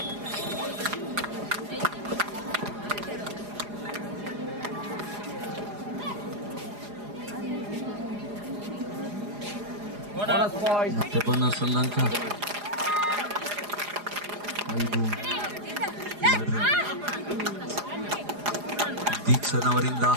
ಮತ್ತೆ ಬೋನಸ್ ಒಂದು ಅಂಕ 5-2. ದೀಕ್ಷನವರಿಂದ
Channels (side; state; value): left; late; 4.9 ms